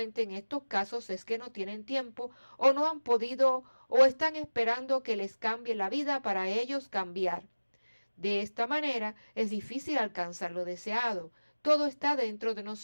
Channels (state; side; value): inverted; both; correlation -1.00